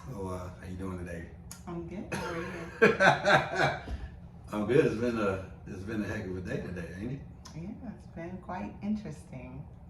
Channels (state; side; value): identical; both; correlation 1.00